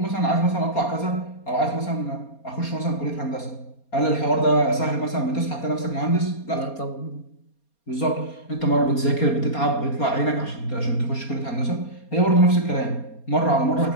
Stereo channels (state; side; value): late; right; 4.3 ms